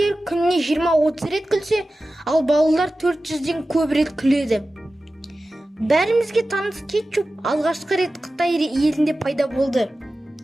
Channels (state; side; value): normal; both; correlation 0.95